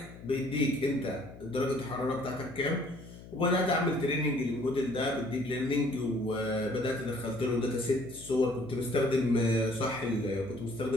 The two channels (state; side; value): noise; left; hum, 17 dB below the sound